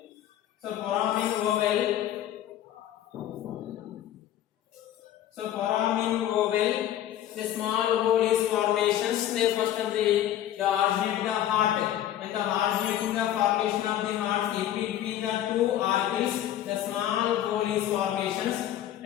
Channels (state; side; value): quieter; right; 11.9 dB